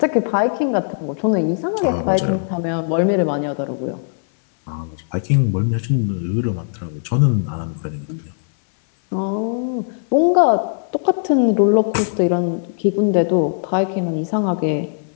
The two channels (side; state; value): right; silent; 62 dB below the other